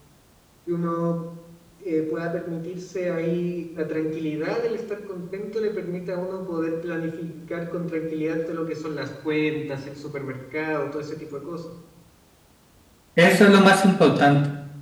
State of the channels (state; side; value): identical; both; correlation 1.00